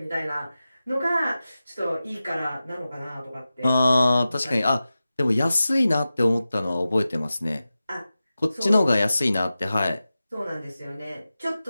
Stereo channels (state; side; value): inverted; both; correlation -0.94